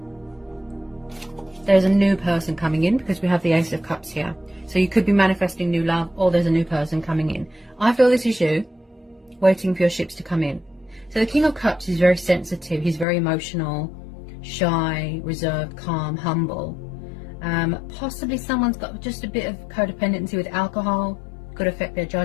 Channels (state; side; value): drops out; right; at 13.1 s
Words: there's a new person coming in, because we have the Ace of Cups here. So you could be manifesting new love, or there's a new person coming in. I feel this is you, waiting for your ships to come in. So the King of Cups is very sensitive. He's very emotional, shy, reserved, calm, humble. Possibly someone's got just a bit of codependency with alcohol. Could affect their